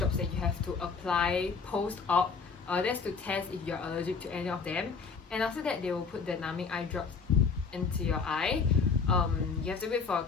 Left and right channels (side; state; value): right; quieter; 5.2 dB